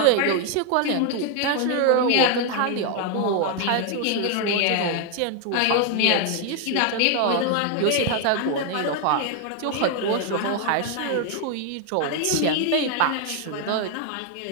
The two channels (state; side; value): different; both; correlation 0.01